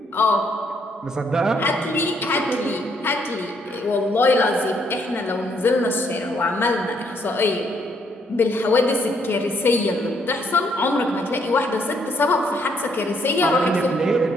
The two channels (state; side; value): normal; both; correlation 0.70